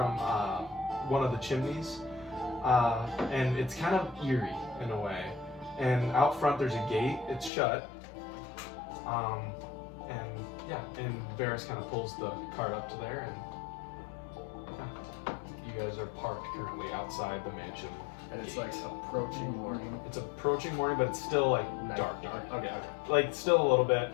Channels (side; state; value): right; drops out; at 7.5 s